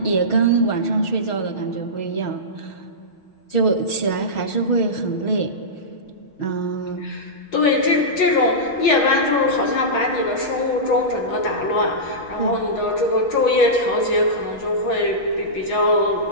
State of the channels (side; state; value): right; late; 6.3 ms